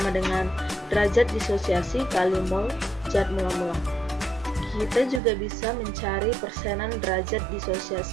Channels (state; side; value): drops out; left; at 5.2 s